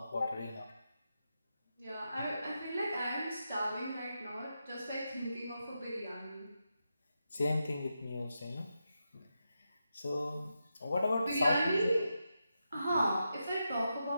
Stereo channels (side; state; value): both; inverted; correlation -0.87